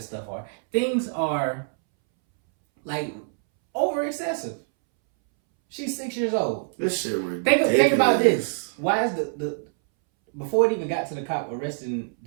Things are like over excessive. She's 6 years old. This shit ridiculous. Think about this. Why is the before it even got to the cop arresting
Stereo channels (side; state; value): left; silent; 62 dB below the other